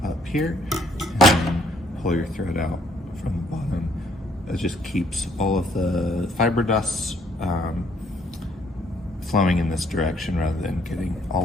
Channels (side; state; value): both; normal; correlation 0.66